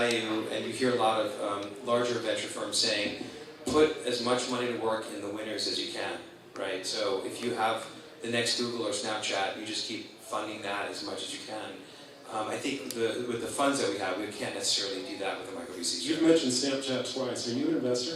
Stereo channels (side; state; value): both; identical; correlation 1.00